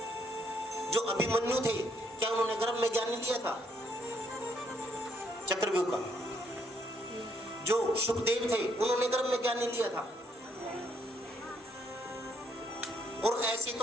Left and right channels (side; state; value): both; normal; correlation 0.71